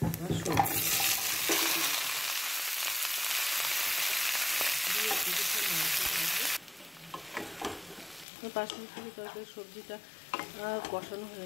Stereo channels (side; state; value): right; drops out; at 8.2 s